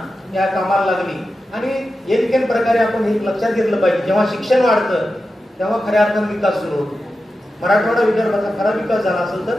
या कामाला लागली. आणि एकेन प्रकारे आपण हे लक्षात घेतलं पाहिजे, जेव्हा शिक्षण वाढतं तेव्हा खऱ्या अर्थाने विकास सुरू होतो. मराठवाडा विदर्भाचा खरा विकास झाला असेल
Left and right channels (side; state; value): both; normal; correlation 0.91